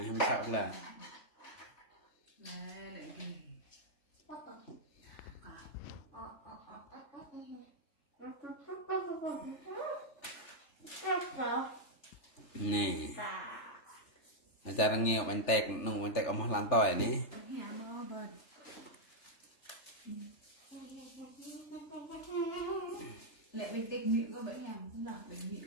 không sao là nè acara nghèo bánh tét nung bánh tét ông làm tỏi nè lệ bình tĩnh nhịn có bẫy nhầm cũng là bình nhịn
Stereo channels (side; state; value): right; late; 3.4 ms